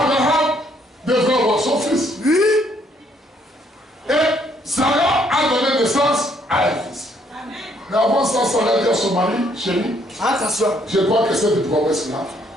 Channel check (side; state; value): both; normal; correlation 0.68